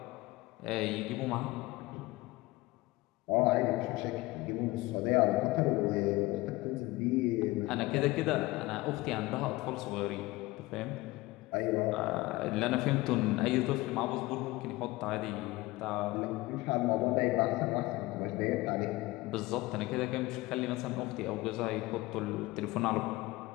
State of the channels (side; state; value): right; quieter; 20.2 dB